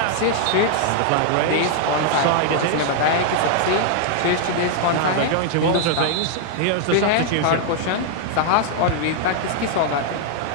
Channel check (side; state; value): both; different; correlation -0.01